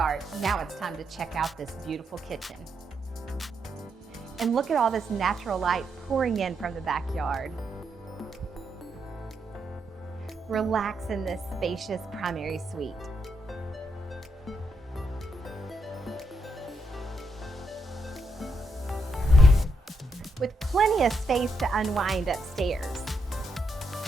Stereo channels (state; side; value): normal; both; correlation 0.80